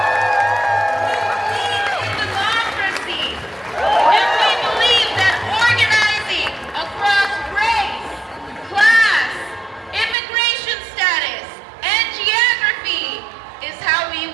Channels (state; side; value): drops out; left; at 10.2 s